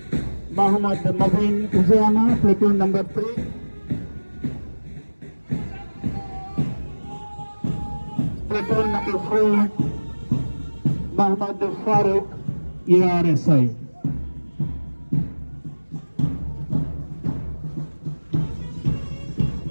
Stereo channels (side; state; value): both; inverted; correlation -1.00